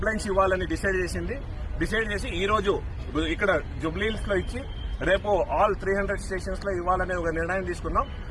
ఇవ్వాలని డిసైడ్ చేసి ఈ రోజు ఇక్కడ జుబ్లీహిల్స్ లో ఇచ్చి రేపు ఆల్ 300 స్టేషన్స్ లో ఇవ్వాలనే ఒక నిర్ణయం తీసుకున్నాం.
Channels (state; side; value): identical; both; correlation 1.00